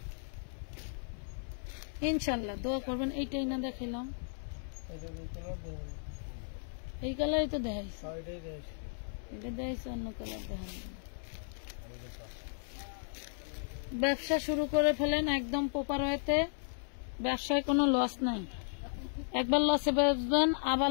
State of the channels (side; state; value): right; silent; 54 dB below the other